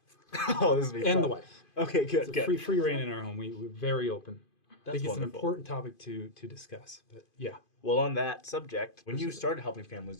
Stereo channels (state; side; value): late; right; 2.5 ms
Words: Oh, this will be And fun. the wife. Okay, good, It's a good. free reign in our home. We're very open. I think it's an wonderful. important topic to discuss. But yeah, Well, on that subject, when you started helping